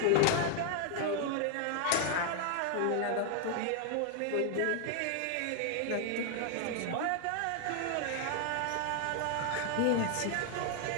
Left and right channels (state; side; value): different; both; correlation 0.00